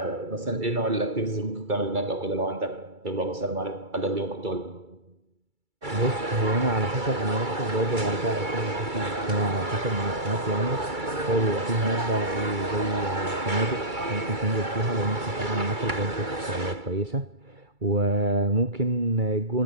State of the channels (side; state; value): left; late; 2.3 ms